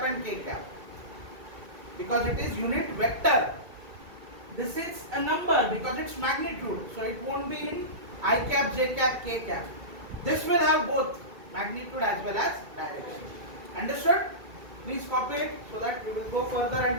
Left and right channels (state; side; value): late; left; 2.2 ms